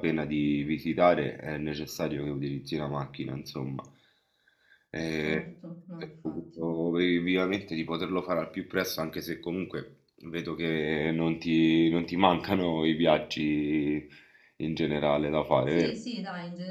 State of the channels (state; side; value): identical; both; correlation 1.00